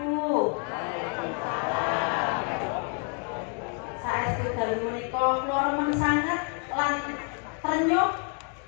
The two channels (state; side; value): quieter; right; 37.3 dB